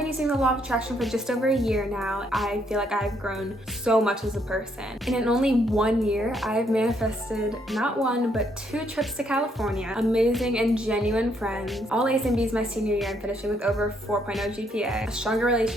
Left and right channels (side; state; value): both; normal; correlation 0.72